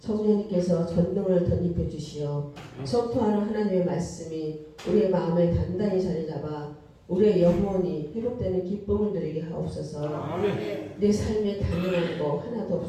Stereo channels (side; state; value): both; identical; correlation 1.00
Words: 전능을 덧입혀 주시어 선포하는 하나님의 말씀이 우리의 마음에 단단히 자리 잡아 우리의 영혼이 회복되는 기쁨을 누리게 하옵소서. 내 삶에 당연한 거 하나도